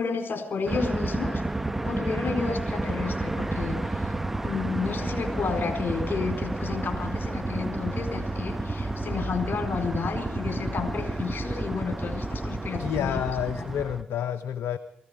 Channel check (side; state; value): both; normal; correlation 0.82